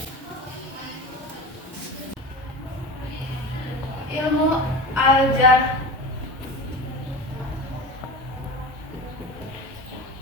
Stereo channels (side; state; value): both; normal; correlation 0.30